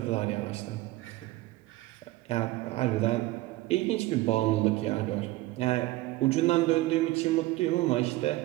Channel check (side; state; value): left; quieter; 18.4 dB